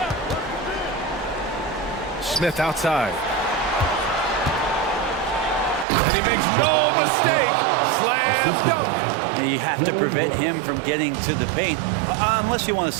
Smith outside. And he makes no mistake. Slam dunk. And you have to prevent him from getting to the paint, unless you want to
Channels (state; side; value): drops out; left; at 5.9 s